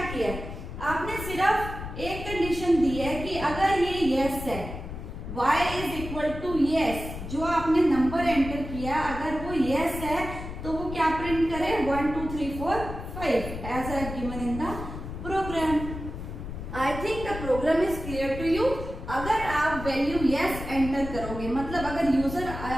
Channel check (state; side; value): noise; left; rumble, 8 dB below the sound